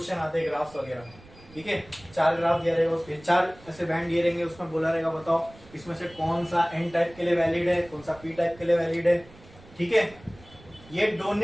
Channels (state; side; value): noise; right; rumble, 23 dB below the sound